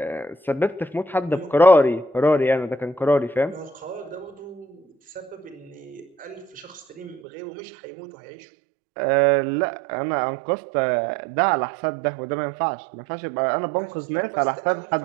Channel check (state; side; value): drops out; left; at 7.2 s